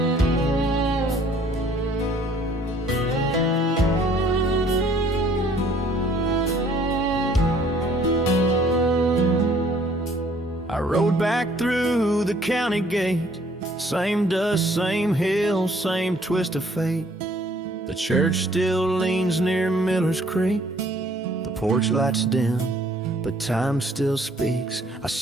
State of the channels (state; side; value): normal; both; correlation 0.59